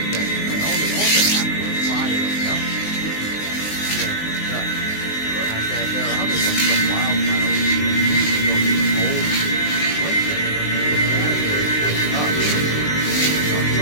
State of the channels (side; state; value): right; late; 19 ms